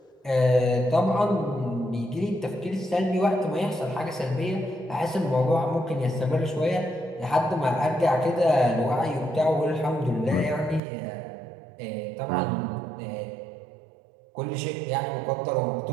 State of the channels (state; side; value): drops out; left; at 10.8 s